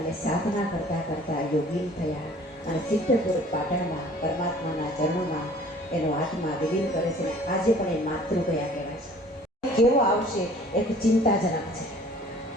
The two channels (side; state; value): both; normal; correlation 0.51